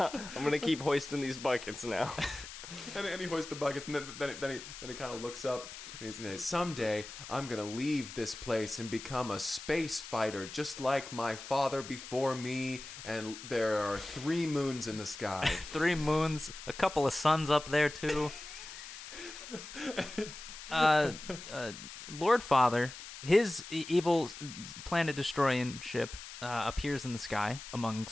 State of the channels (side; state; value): left; noise; hiss, 12 dB below the sound